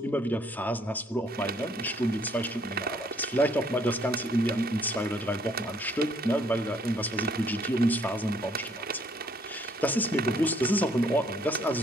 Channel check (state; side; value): normal; both; correlation 0.64